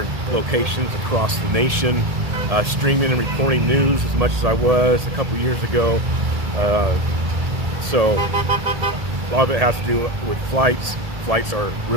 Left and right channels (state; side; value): late; left; 1.7 ms